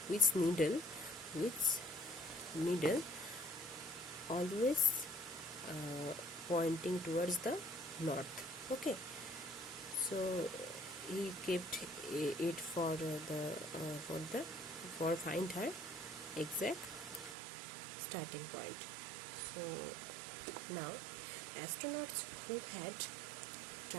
needle always pointing towards the north. Okay, so he kept it for find her exact starting point. So now astronauts who had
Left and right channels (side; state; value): left; drops out; at 17.4 s